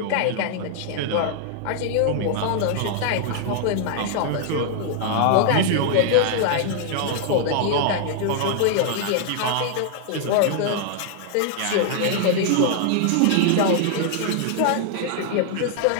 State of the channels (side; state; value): both; different; correlation -0.01